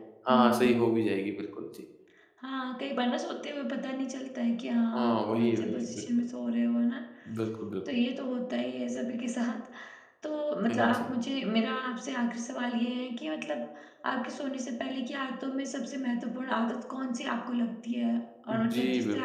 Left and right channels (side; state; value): both; identical; correlation 1.00